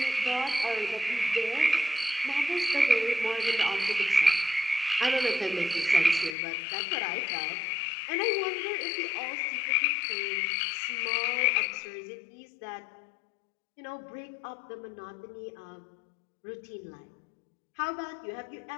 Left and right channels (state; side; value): drops out; right; at 6.4 s